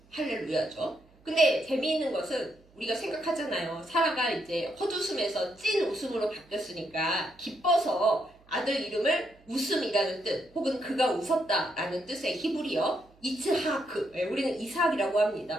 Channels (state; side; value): noise; right; hum, 30 dB below the sound